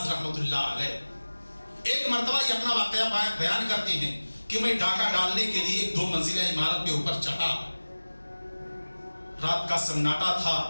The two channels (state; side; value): inverted; both; correlation -1.00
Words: رحمۃ اللہ علیہ ایک مرتبہ یہ اپنا واقعہ بیان کرتے ہیں کہ میں ڈاکہ ڈالنے کے لیے ایک 2 منزلہ عمارت کے اوپر چڑھا، رات کا سناٹا تھا،